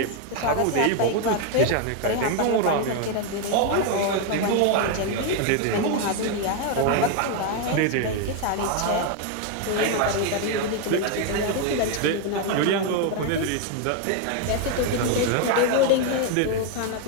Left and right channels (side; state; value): both; different; correlation 0.01